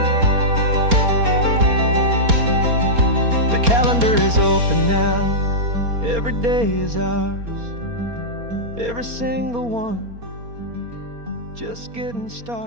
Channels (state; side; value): late; left; 4.3 ms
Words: Calendar is open now, every day is ours, every single one, just getting